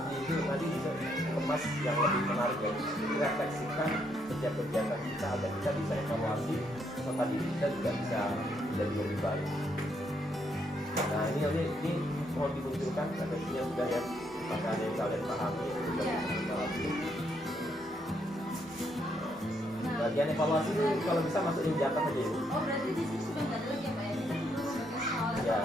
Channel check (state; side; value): normal; both; correlation 0.74